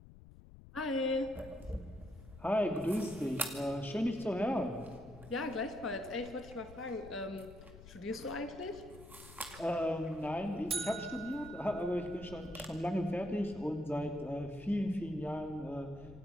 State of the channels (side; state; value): left; noise; rumble, 17 dB below the sound